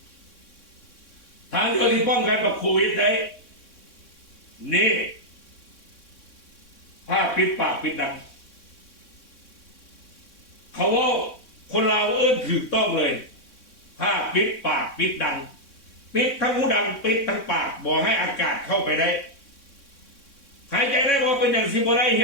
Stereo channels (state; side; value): late; right; 3.6 ms